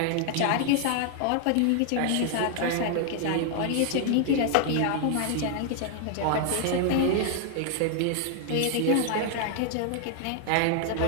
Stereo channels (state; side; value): different; both; correlation 0.00